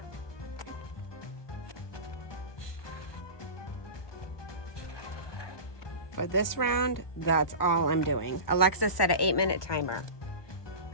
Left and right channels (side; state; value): right; late; 1.2 ms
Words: For this round, that's all I'm doing. Alexa set an 8-minute timer.